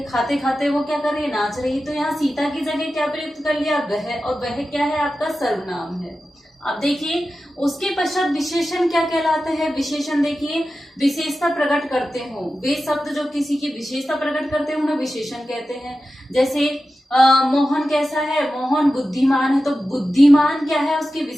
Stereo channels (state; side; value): normal; both; correlation 0.93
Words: खाते खाते वो क्या कर रही है, नाच रही है। तो यहाँ सीता की जगह क्या प्रयुक्त कर लिया, वह, और वह क्या है आपका सर्वनाम है। अब देखिए उसके पश्चात विशेषण क्या कहलाते हैं। विशेषण देखिए विशेषता प्रकट करते हो, वे शब्द जो किसी की विशेषता प्रकट करते हैं उन्हें विशेषण कहते हैं। जैसे मोहन कैसा है, मोहन बुद्धिमान है, तो बुद्धिमान क्या है, उसकी